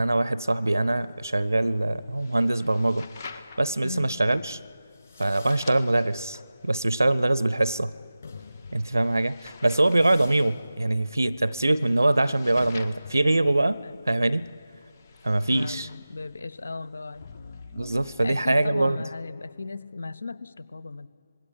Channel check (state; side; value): inverted; both; correlation -0.96